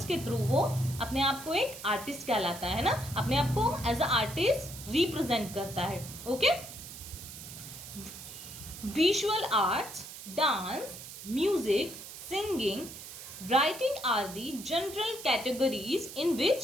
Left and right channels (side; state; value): right; noise; hiss, 12 dB below the sound